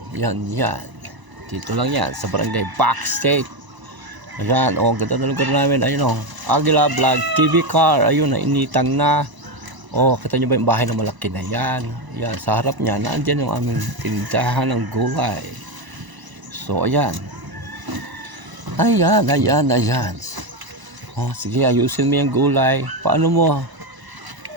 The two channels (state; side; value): late; left; 1.0 ms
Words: Dito lang yan, sa barangay Backstage. Ayan, ganda na lugar namin. Ayun, Aguila Vlog TV Car. Ayun, nainitan na. Kita nyo ba yung bahay na malaki na yan? Yan, sa harap niya, naandyan yung aming tindahan ng gulay. So, ayan. Ayan. Sige, ayusin mo yung gulay. Paano mo?